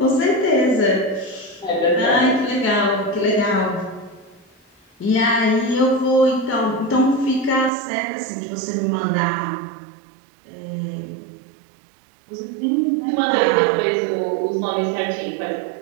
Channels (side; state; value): left; drops out; at 7.7 s